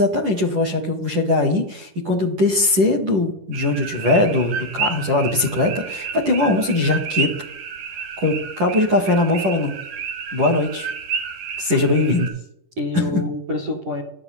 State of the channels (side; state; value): left; late; 10 ms